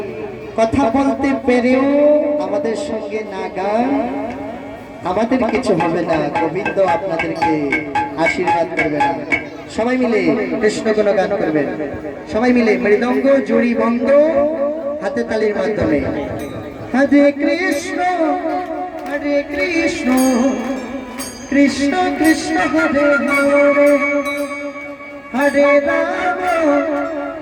কথা বলতে পেরেও আমাদের সঙ্গে না গান আমাদের কিছু হবে না গোবিন্দ আপনাদেরকে আশীর্বাদ করবে না সবাই মিলে কৃষ্ণ গুণ গান করবেন সবাই মিলে মৃদঙ্গ জুড়ি বঙ্গ হাতে তালির মাধ্যমে হরে কৃষ্ণ কৃষ্ণ কৃষ্ণ হরে হরে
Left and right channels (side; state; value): both; identical; correlation 1.00